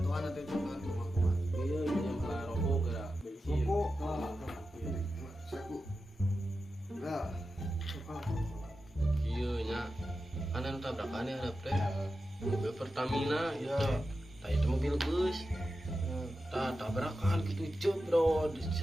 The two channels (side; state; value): both; normal; correlation 0.91